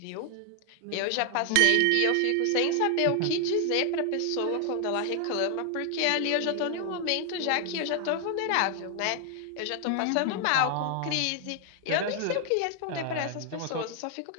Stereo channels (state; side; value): different; both; correlation 0.00